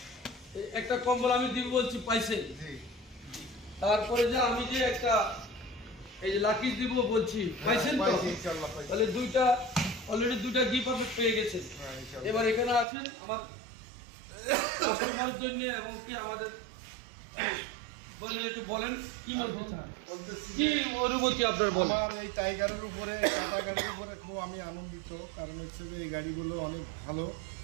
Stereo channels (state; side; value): drops out; left; at 12.9 s